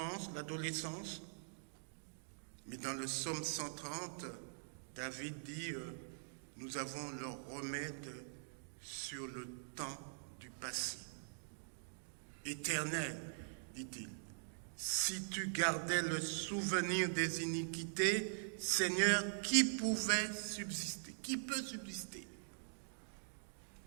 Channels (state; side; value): silent; left; digital silence